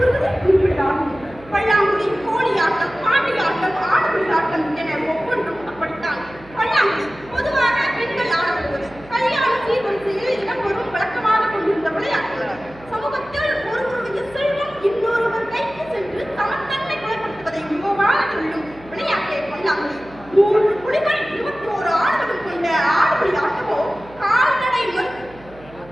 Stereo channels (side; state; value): right; noise; hum, 22 dB below the sound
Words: வருவது குறிப்பிட்டாகும். பல்லாங்குழி, கோழியாட்டம், பாண்டியாட்டம், ஆடுபுலி ஆட்டம் என ஒவ்வொன்றும் அப்படித்தான். பல்லாங்குழி பொதுவாக பெண்கள் ஆடப்படுவது. கல்யாண சீர்வரிசையில் இடம்பெறும் வழக்கமாக கொண்டிருந்த விளையாட்டு. சமூகத்தில் ஒருவருடைய செல்வம் இன்னொருவர் கைக்கு சென்று சமத்தன்மை குறைப்படுத்துவதை மிகவாக சொல்லும் விளையாட்டை பல்லாங்குழி. 3 புலிகள் 21 ஆடுகளும் கொண்ட ஆடுபுலி ஆட்டமோ கால்நடை